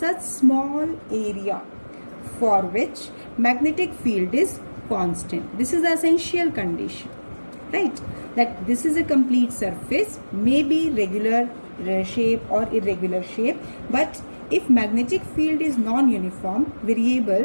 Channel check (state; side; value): inverted; both; correlation -1.00